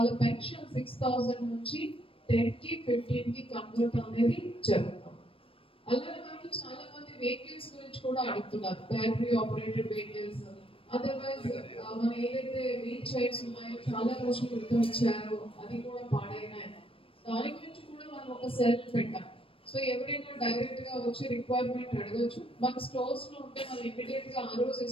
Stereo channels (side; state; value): right; late; 0.26 ms